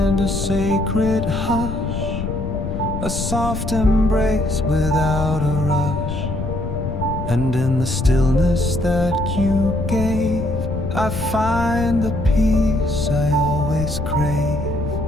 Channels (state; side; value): noise; left; rumble, 5 dB below the sound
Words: a sacred hush, a soft embrace without a rush. And in the stillness that you gave, I find the peace I always crave.